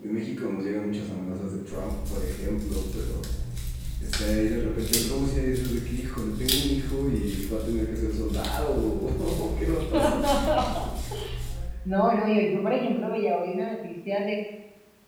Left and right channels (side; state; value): both; identical; correlation 1.00